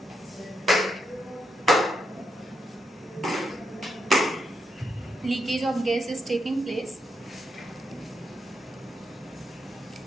Leakage of gas is taking place.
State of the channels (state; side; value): normal; both; correlation 0.81